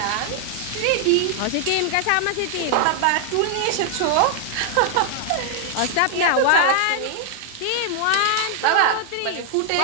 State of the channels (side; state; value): both; different; correlation 0.00